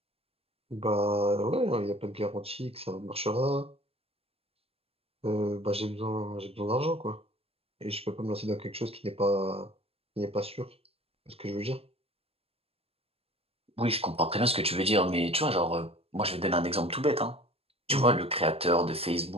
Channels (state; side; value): late; left; 0.29 ms